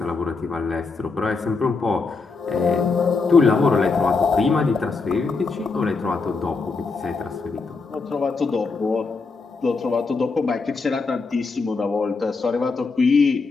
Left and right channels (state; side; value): quieter; right; 4.3 dB